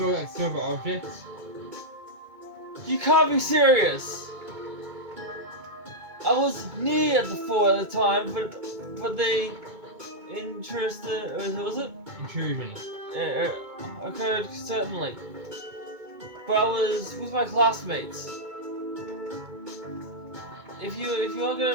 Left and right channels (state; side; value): late; left; 2.2 ms